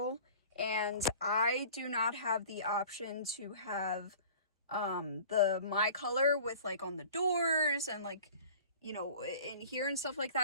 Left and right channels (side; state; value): both; inverted; correlation -0.45